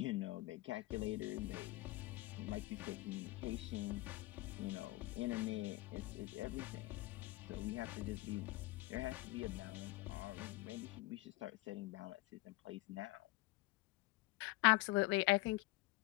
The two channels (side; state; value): right; quieter; 20.7 dB